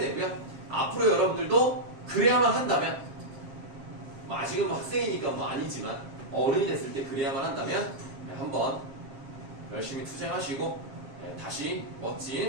앞으로 여러분들도 그래야만 한다면, 뭐 아직은 뭐 학생이니까 뭐 아니지만 어른이 됐을 때 그래야만 한다면 한번 열심히 투쟁하시고 다시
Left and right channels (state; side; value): late; left; 7.5 ms